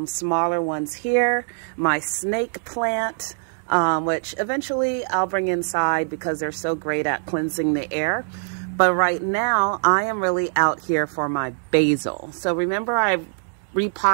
smaller ones here. My snake plant, which eventually I'll bring inside because they're so great at cleansing the air. But right now I am really out here for my basil. So remember, I've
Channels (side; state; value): left; silent; digital silence